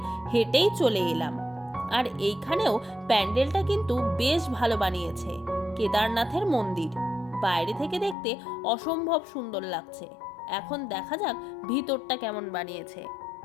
হেঁটেই চলে এলাম। আর এইখানেও প্যান্ডেলটা কিন্তু বেশ ভালো বানিয়েছে, কেদারনাথের মন্দির, বাইরে থেকে দেখতে অসম্ভব সুন্দর লাগছে। এখন দেখা যাক ভিতরটা কেমন বানিয়েছে।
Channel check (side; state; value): right; drops out; at 8.2 s